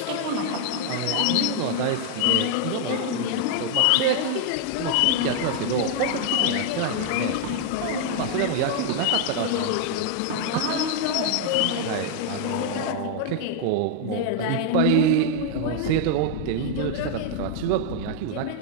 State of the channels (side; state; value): both; different; correlation 0.00